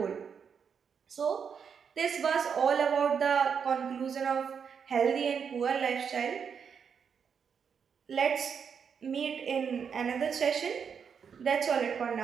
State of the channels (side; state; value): left; quieter; 6.8 dB